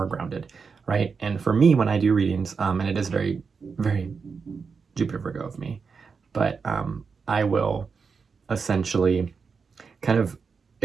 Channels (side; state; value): left; quieter; 5.4 dB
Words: grounded, right? And for me, when I do readings, and it is very, very Jupiter Virgo of me, but I will essentially kind of